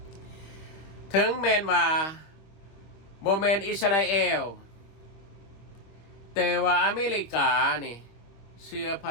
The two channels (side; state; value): right; late; 25 ms